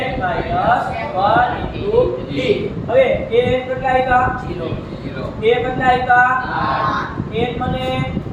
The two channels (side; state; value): both; identical; correlation 1.00